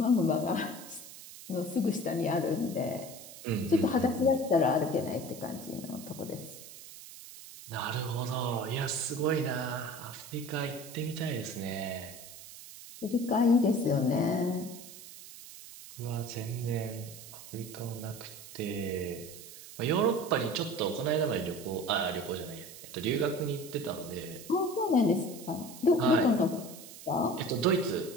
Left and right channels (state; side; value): noise; right; hiss, 15 dB below the sound